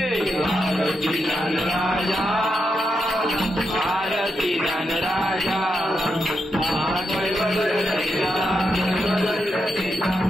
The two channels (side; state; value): both; normal; correlation 0.84